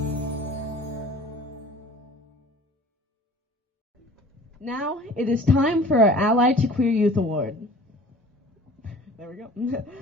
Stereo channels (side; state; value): both; normal; correlation 0.46